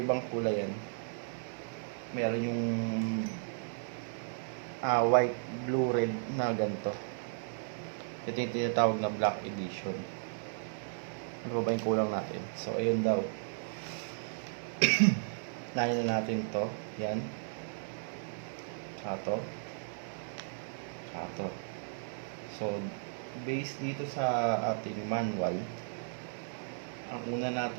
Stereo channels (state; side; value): silent; left; digital silence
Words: kulay yan. Meron yung white, blue, red na ganito. Ito yung tinatawag na black edition. Ano ba yung kulang natin? So, ayun daw. Nahin na natin to. Yan. Tsaka to. So, based dito sa ating manual, ang una